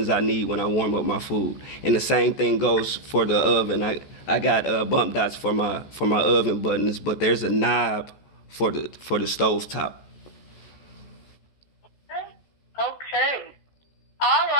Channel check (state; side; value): late; right; 14 ms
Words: I need when I warm up my food. And the same thing goes for the oven. I got bump dots for my oven buttons, but there's a knob for the stove top. Okay. All